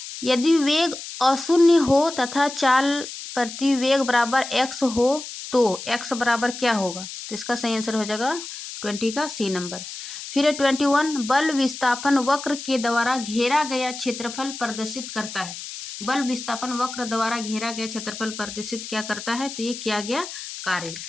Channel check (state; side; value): noise; left; hiss, 10 dB below the sound